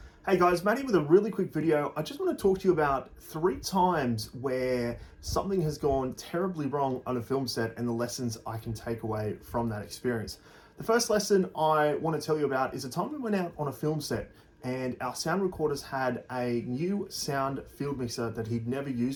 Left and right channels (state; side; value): identical; both; correlation 1.00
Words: Hey guys, Matty with a really quick video. I just want to talk to you about 3 times where something has gone terribly wrong on a film set and the lessons I can take away from that experience. The first lesson I want to tell you about is a time we went out on a film set and our sound recorders had a new sound field mixer that he'd never